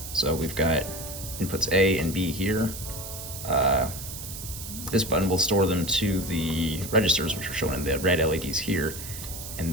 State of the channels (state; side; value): noise; right; hiss, 10 dB below the sound